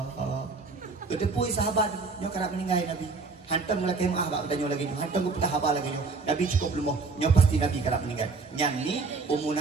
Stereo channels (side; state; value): left; quieter; 4.2 dB